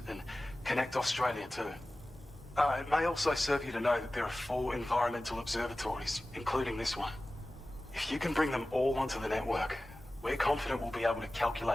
and connect Australia too. It may also serve you to know that there are 4 environmental observatories, including this one. If you can bring them all onto the network, we're confident we'll be able to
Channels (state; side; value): normal; both; correlation 0.96